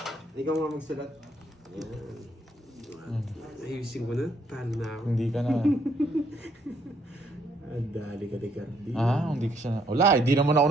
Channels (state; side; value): normal; both; correlation 0.70